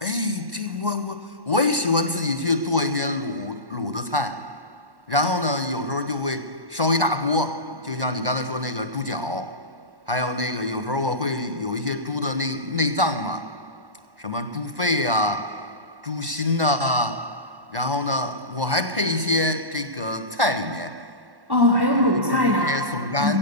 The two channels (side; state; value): left; late; 1.1 ms